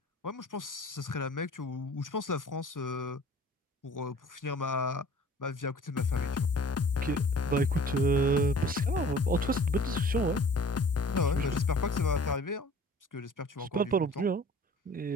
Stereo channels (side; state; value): both; normal; correlation 0.48